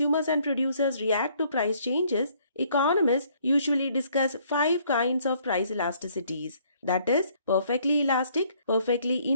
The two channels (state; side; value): inverted; both; correlation -0.64